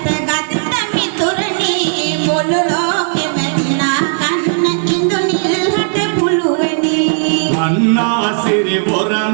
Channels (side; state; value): left; silent; digital silence